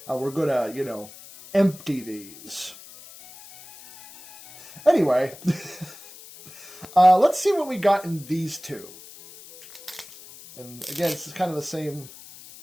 We're gonna, empty these. Anyway, let's see what we got in these two. And again, this is kind of the same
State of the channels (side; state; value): left; noise; hiss, 18 dB below the sound